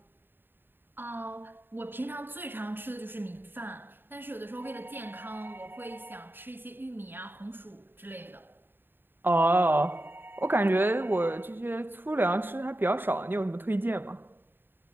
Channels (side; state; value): left; late; 0.096 ms